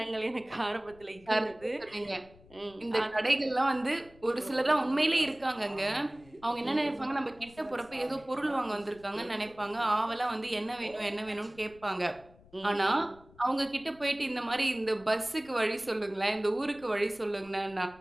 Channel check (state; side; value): noise; left; rumble, 25 dB below the sound